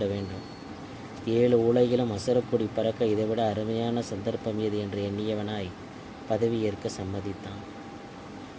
வேண்டும். 7 உலகிலும் அசுரக்கொடி பறக்க இதைவிட அருமையான சந்தர்ப்பம் ஏது என்று எண்ணியவனாய் பதவியேற்க சம்மதித்தான்.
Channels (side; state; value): both; identical; correlation 1.00